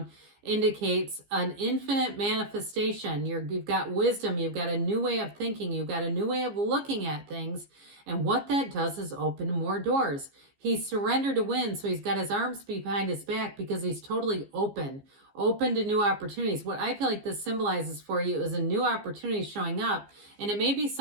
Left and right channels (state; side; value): late; left; 15 ms